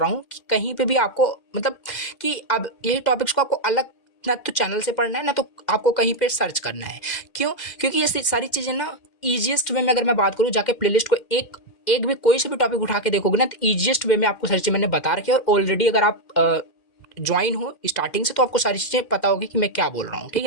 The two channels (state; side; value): late; right; 2.1 ms